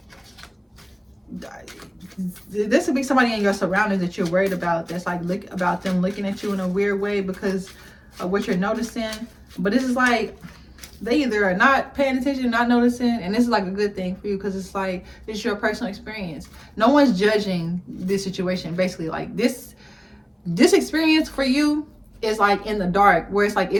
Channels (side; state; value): both; identical; correlation 1.00